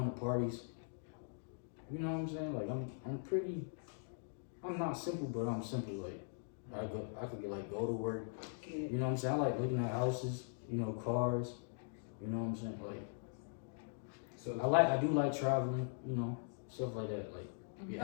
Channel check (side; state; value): right; silent; digital silence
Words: to parties. You know what I'm saying? Like I'm not simple, but I'm simple. Like I could like go to work. You know what I'm saying? I like looking at houses, you know, cars. You know what I'm saying? Like So I do like traveling, you know, stuff like that. Like be